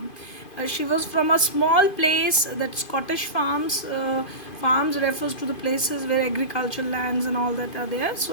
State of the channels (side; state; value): right; late; 2.5 ms